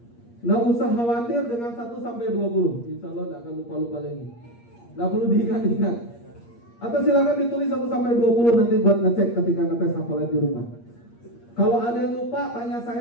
Nggak usah khawatir dengan 1 sampai 20. Insya Allah nggak akan lupa-lupa lagi. Nggak perlu diingat-ingat. Atau silakan ditulis 1 sampai 20 nanti buat ngecek ketika ngetes hafalan di rumah. Kalau ada yang lupa, tanya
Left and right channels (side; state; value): right; late; 8.5 ms